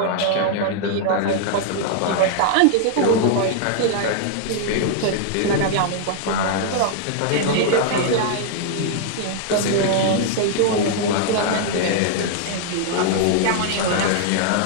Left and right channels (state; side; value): different; both; correlation 0.00